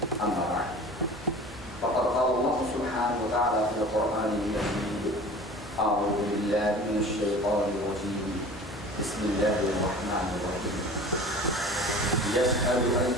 أما بعد فقد قال الله سبحانه وتعالى في القرآن المجيد أعوذ بالله من الشيطان الرجيم بسم الله الرحمن الرحيم يسأل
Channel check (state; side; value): noise; right; hum, 20 dB below the sound